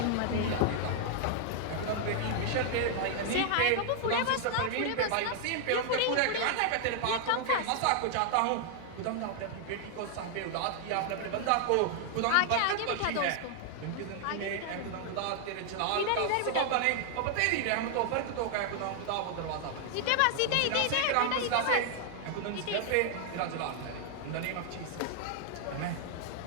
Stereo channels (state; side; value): different; both; correlation 0.00